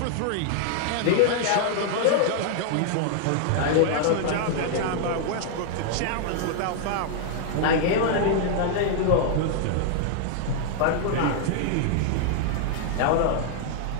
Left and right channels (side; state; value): both; different; correlation -0.01